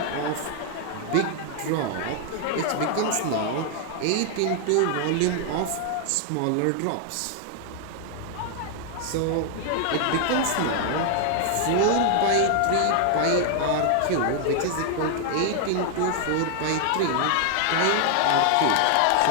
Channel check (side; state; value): both; different; correlation 0.00